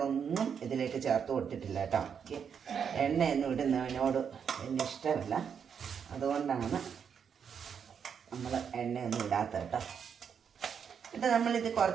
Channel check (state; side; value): quieter; left; 7.2 dB